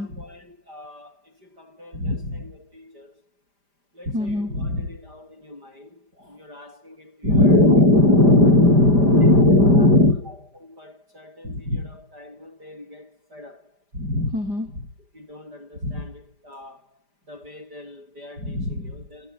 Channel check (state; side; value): late; left; 5.0 ms